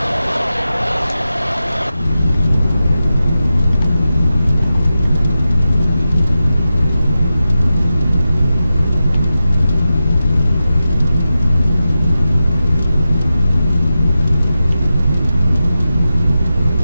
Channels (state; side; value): inverted; both; correlation -0.91